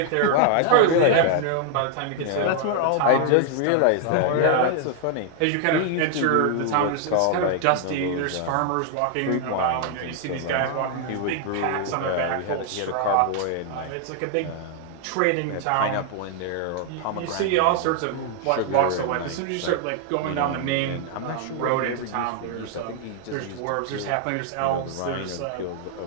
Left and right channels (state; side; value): different; both; correlation 0.00